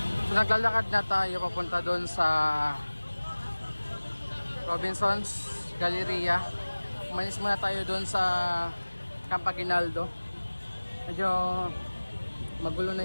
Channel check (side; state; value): both; inverted; correlation -1.00